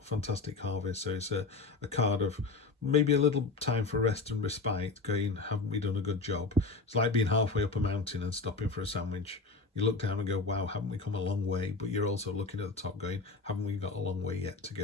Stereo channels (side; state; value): right; quieter; 3.8 dB